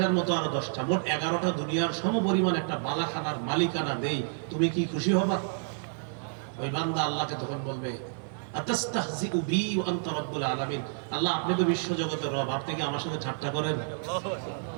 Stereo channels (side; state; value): left; silent; 57 dB below the other